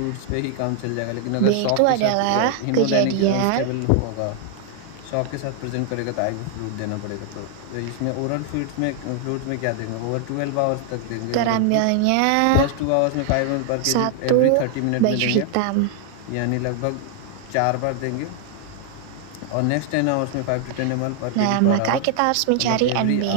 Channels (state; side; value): different; both; correlation 0.00